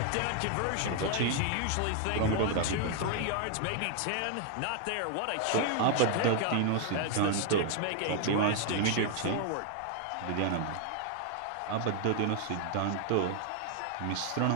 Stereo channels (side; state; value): both; different; correlation 0.00